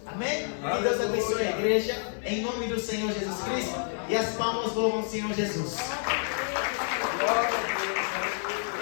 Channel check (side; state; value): right; silent; 59 dB below the other